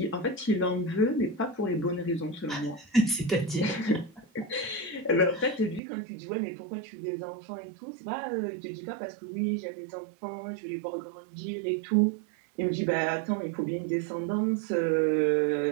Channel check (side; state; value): left; drops out; at 5.8 s